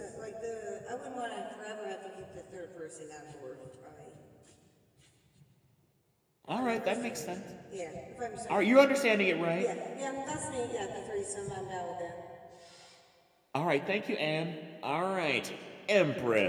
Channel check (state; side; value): identical; both; correlation 1.00